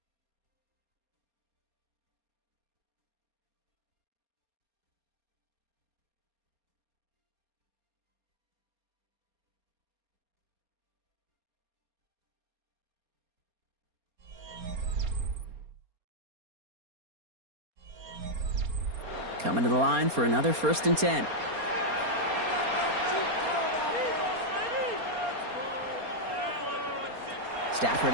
Coming to the line for another first and 10.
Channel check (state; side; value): late; left; 4.3 ms